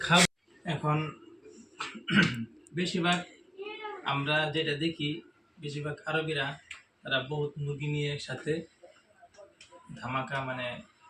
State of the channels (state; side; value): identical; both; correlation 1.00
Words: খাব। এখন বেশিরভাগ আমরা যেটা দেখি, বেশিরভাগ আরবিরা তারা বহুত মুরগি নিয়ে একসাথে ধামাকা মানে